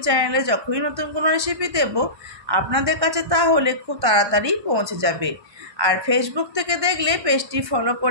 চ্যানেলে যখনই নতুন কোনো রেসিপি দেব আপনাদের কাছে তাহলে খুব তাড়াতাড়ি পৌঁছে যাবে। আর ফেসবুক থেকে দেখলে পেজটি ফলো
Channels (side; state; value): left; late; 1.1 ms